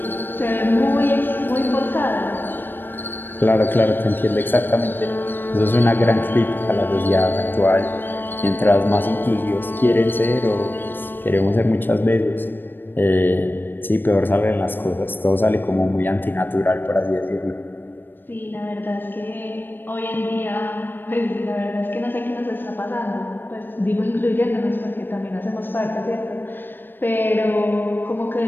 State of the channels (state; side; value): late; right; 0.095 ms